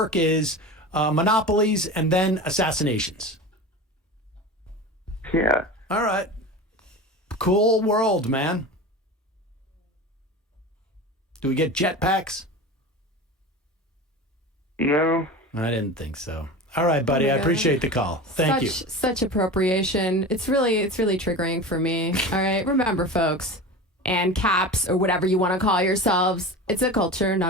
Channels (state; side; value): normal; both; correlation 0.31